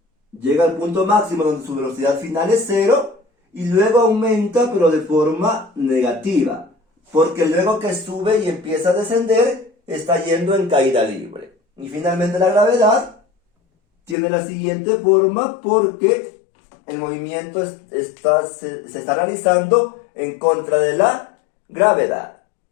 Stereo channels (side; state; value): right; drops out; at 14.2 s